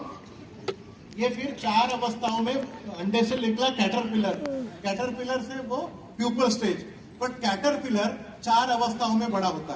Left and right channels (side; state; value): both; identical; correlation 1.00